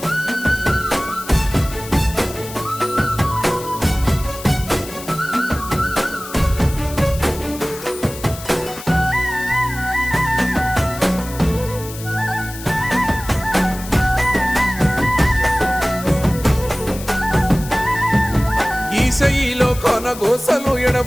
ఈశయిలో కొన గోసలు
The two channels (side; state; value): left; noise; hiss, 14 dB below the sound